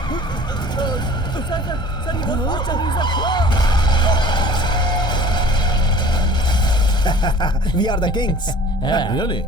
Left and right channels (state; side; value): late; right; 1.5 ms